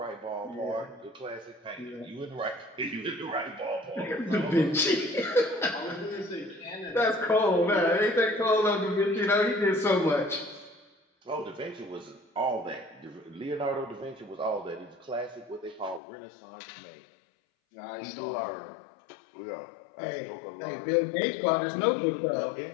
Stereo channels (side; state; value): right; drops out; at 16.0 s